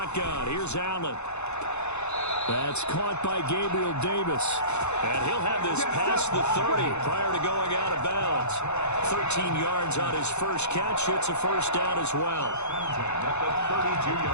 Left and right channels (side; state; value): right; late; 0.82 ms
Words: Here's Allen. That's caught by Gabriel Davis. And he'll have this past the 30 prior to going out of bounds. 13 yards on his first catch. It's a 1st down as well. At the